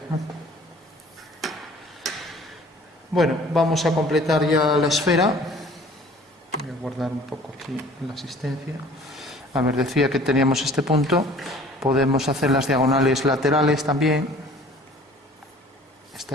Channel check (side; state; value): both; normal; correlation 0.50